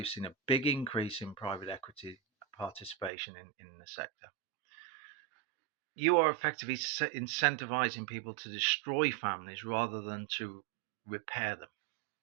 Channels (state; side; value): drops out; left; at 3.1 s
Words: seen a big increase in private equity participation in the sector. You are effectively incentivizing people to destroy families rather than to repair them,